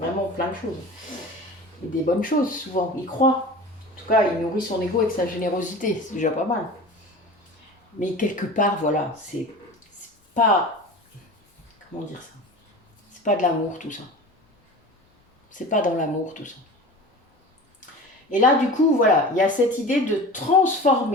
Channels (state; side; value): normal; both; correlation 0.35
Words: plein de choses. Et des bonnes choses, souvent. Il croit. En tout cas, il nourrit son ego avec sa générosité. C'est déjà pas mal. Mais quelque part, voilà, c'est pas... Comment dire ça? C'est pas de l'amour, tout ça. C'est pas dans l'amour, tout ça. Et là, du coup, voilà, il y a cette idée de